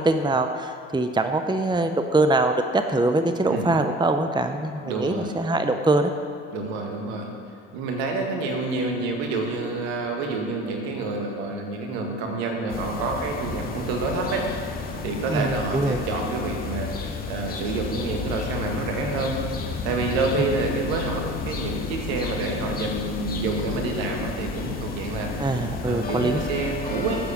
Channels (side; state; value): both; normal; correlation 0.43